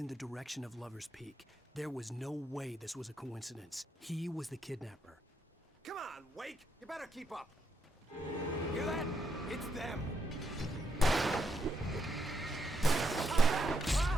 the direction of Lover's Peak. There was no way this was a coincidence. He was the kidnapper. Come on, Wake! You better keep up. Hear that? It's them.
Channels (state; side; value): normal; both; correlation 0.79